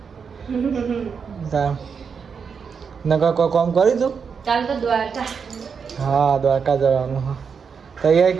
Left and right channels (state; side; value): quieter; left; 6.1 dB